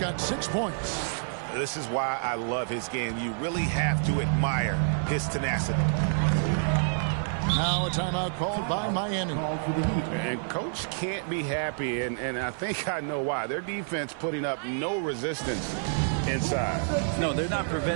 6 points. This is why I love his game. You really have to admire his tenacity. Now a timeout called by Miami. And Coach can't be happy, and I think I know why. Their defense putting up no resistance inside. No, they're not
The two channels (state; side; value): silent; left; 56 dB below the other